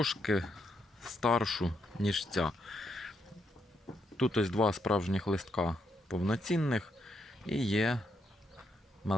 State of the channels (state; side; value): normal; both; correlation 0.79